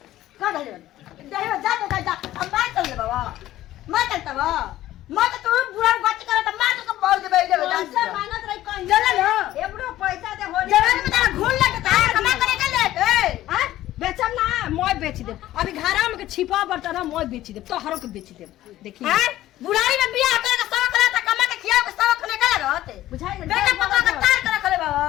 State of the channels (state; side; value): quieter; right; 14.4 dB